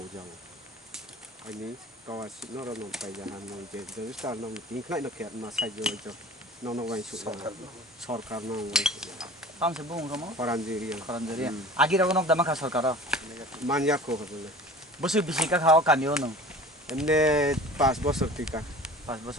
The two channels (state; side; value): normal; both; correlation 0.42